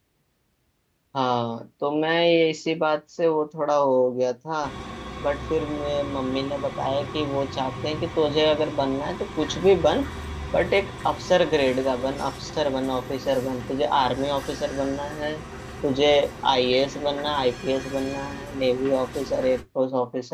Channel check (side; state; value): both; identical; correlation 1.00